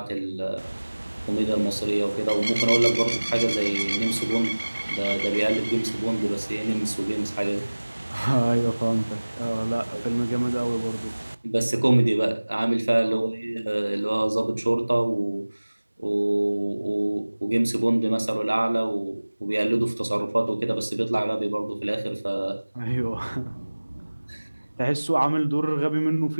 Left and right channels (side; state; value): both; inverted; correlation -1.00